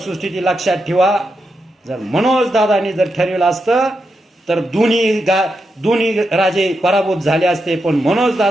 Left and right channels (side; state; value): both; normal; correlation 0.85